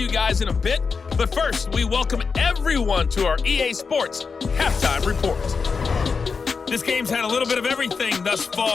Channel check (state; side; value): quieter; right; 5.1 dB